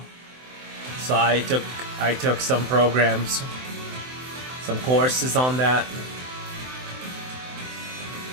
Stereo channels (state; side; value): late; left; 23 ms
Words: so I took some programs, some courses on that.